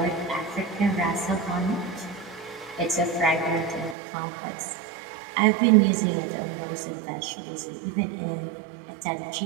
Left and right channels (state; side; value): drops out; left; at 4.0 s